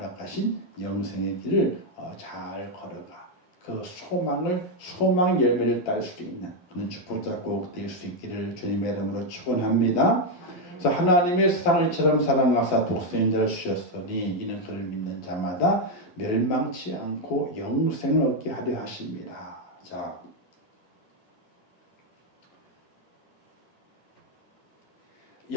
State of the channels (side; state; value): right; late; 11 ms